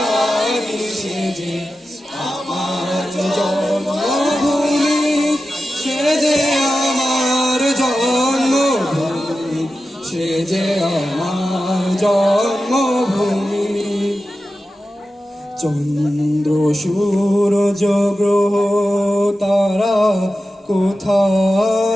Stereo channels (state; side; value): normal; both; correlation 0.92